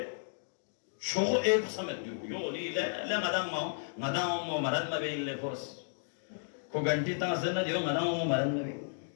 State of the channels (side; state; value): right; silent; digital silence